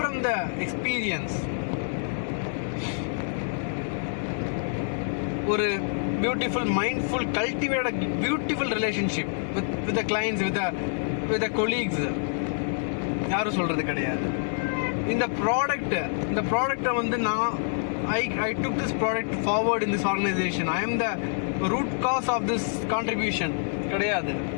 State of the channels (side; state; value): right; silent; 58 dB below the other